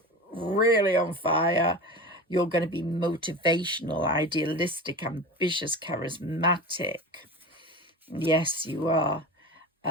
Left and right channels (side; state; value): both; normal; correlation 0.30